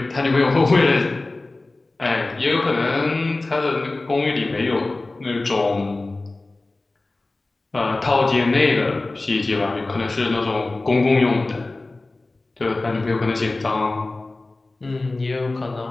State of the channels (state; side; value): quieter; right; 3.1 dB